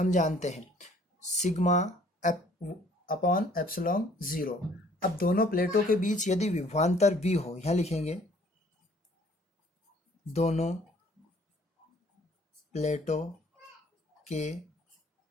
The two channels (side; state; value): both; normal; correlation 0.58